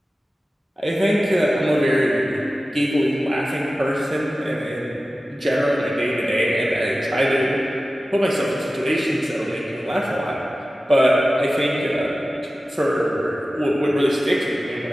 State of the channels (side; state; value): both; normal; correlation 0.95